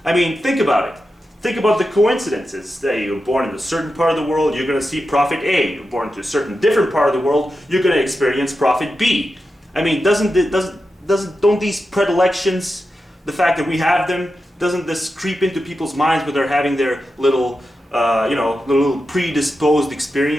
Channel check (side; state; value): both; normal; correlation 0.90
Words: I mean, think about it. Think about the coincidences. Say you're born in a certain part of the world, you're going to see prophet A. You're born to a certain different part of the world, you're going to experience prophet B. I mean, don't these predilections, the fact that we have them, doesn't this creep into people's minds when they're having their little, you know, little predisposed